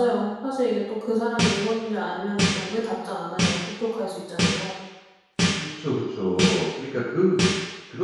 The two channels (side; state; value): both; identical; correlation 1.00